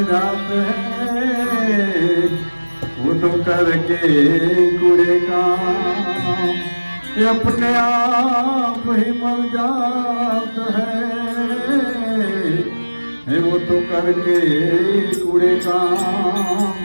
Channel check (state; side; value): inverted; both; correlation -1.00